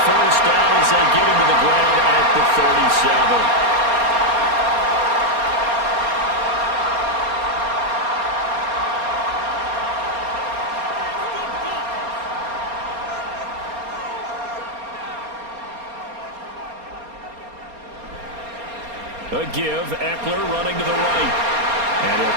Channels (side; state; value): left; late; 4.3 ms